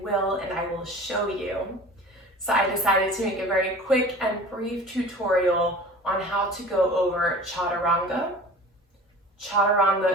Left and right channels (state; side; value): normal; both; correlation 0.41